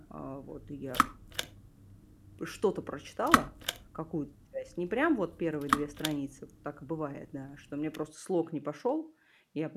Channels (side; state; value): both; identical; correlation 1.00